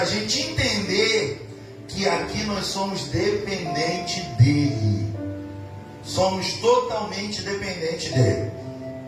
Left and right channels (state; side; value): identical; both; correlation 1.00